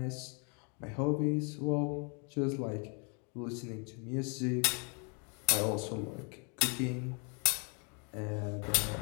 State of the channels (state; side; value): quieter; right; 36.4 dB